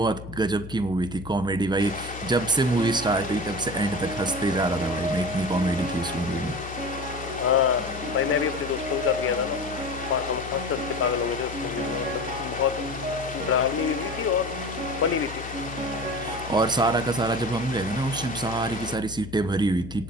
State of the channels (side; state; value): left; noise; hum, 12 dB below the sound